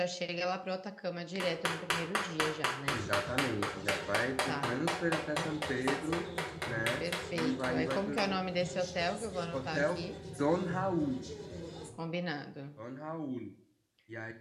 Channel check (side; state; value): both; identical; correlation 1.00